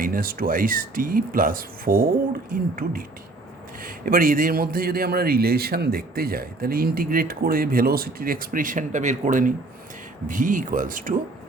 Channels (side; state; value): left; quieter; 3.1 dB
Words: + 4 × ডিটি। এবার এদের মধ্যে যদি আমরা রিলেশন দেখতে যাই তাহলে ইন্টিগ্রেট করে ভেলোসিটির এক্সপ্রেশনটা বের করে নিই। ভি ইকুয়ালস টু